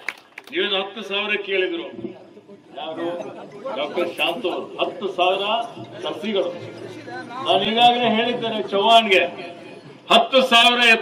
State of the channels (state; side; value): identical; both; correlation 1.00